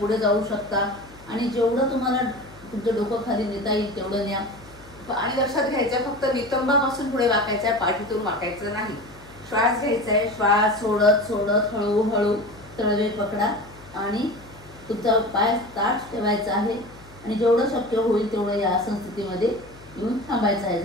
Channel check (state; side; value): noise; left; hum, 22 dB below the sound